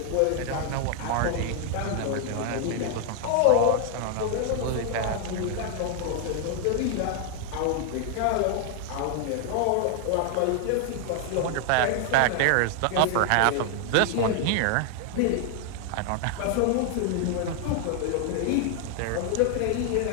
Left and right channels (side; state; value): both; different; correlation 0.00